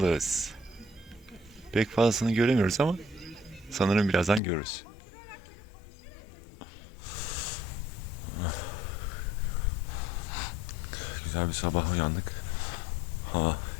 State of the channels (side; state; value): right; drops out; at 4.4 s